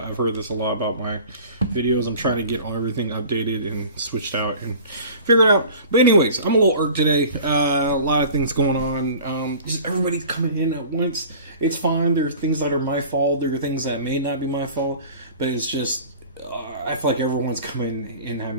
I've heard this a lot about my videos. I'm trying to get everything updated and switched out and figure it out. But anyways, I'm a little irked today. A lot of things going on. Just everybody's coming in at once. It's fine. There are things that are my fault. There are things that may not be my fault. But it's just, I feel like everyone's coming in at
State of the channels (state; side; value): inverted; both; correlation -0.43